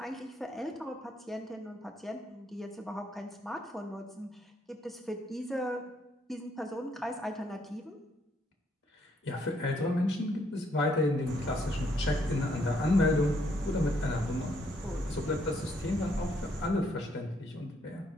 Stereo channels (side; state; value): both; normal; correlation 0.71